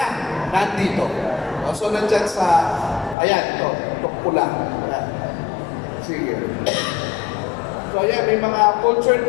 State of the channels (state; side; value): drops out; right; at 3.2 s